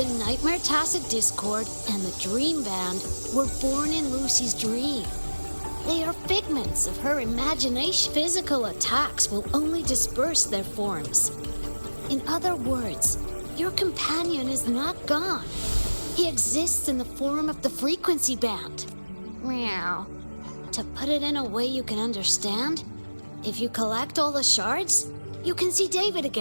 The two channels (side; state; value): both; inverted; correlation -1.00